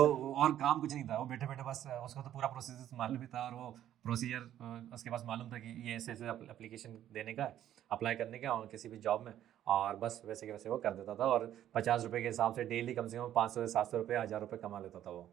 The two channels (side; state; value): left; quieter; 11.6 dB